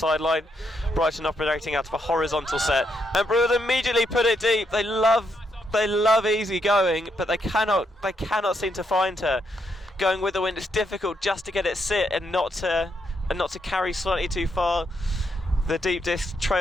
Brighton operating out of a horizontal set, and Brew will immediately put it deep. They love Easy going, but they cannot seem to find her. Going with the wind, it's difficult just to get it sit and not to carry slightly too far. The deep disc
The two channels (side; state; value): both; normal; correlation 0.78